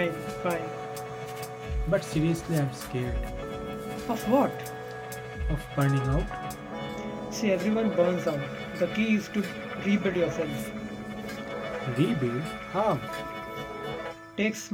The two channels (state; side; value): identical; both; correlation 1.00